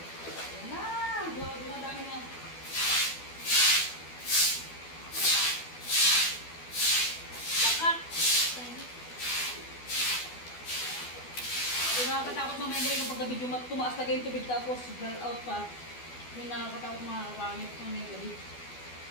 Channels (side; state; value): right; late; 12 ms